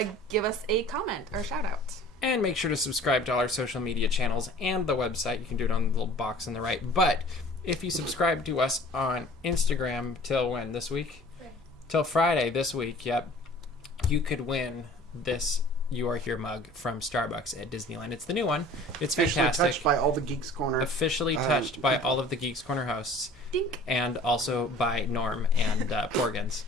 give us a comment or shout out. And make sure to subscribe to all our social media channels and the website. You can do it on the little box on the right. But if you subscribe to us on Instagram till when this week? Till Friday this week, yep. You could win this You Are Here mug from Starbucks at Disneyland. It's the new one. It's fantastic. Touched by all the Geeks Corner. Officially touched by all of the Geeks Corner hosts. Dink. And also by Norm and Porgs.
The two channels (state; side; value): normal; both; correlation 0.48